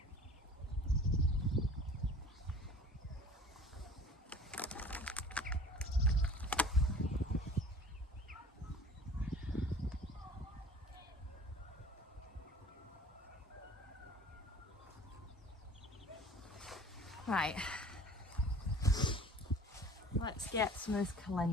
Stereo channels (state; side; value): normal; both; correlation 0.45